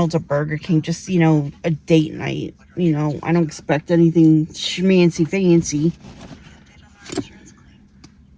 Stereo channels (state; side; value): identical; both; correlation 1.00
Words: or Burger King, just, you know, a date night. You know, I don't expect anything schmancy fancy.